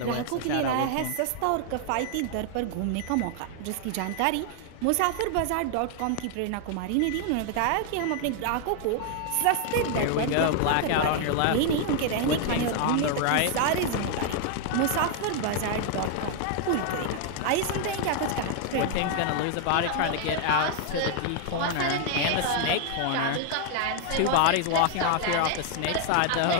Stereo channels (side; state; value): both; different; correlation 0.00